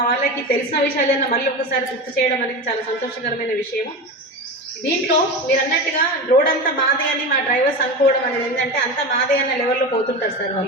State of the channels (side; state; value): both; normal; correlation 0.25